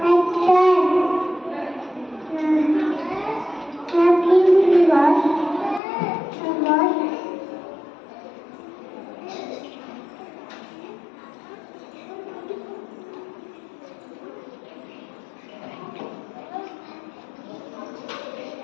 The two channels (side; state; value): right; drops out; at 5.8 s